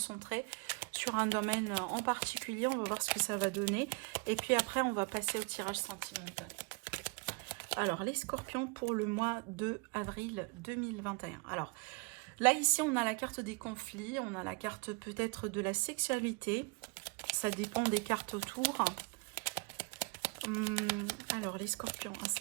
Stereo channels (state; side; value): quieter; left; 30.8 dB